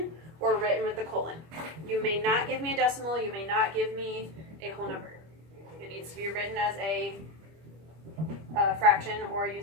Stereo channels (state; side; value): late; left; 25 ms